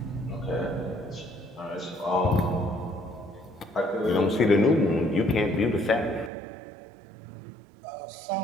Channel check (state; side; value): drops out; left; at 6.3 s